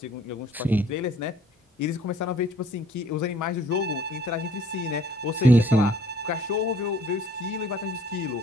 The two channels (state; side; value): normal; both; correlation 0.58